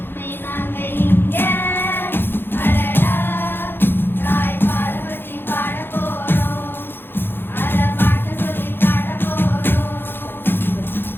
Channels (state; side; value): late; right; 0.10 ms